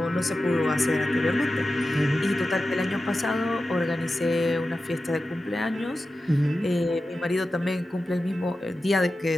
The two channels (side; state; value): both; normal; correlation 0.93